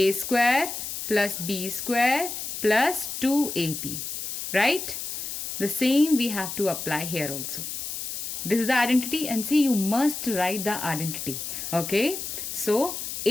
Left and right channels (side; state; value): left; noise; hiss, 6 dB below the sound